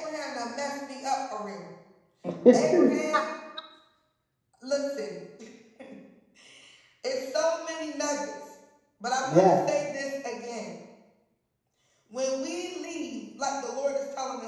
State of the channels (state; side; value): identical; both; correlation 1.00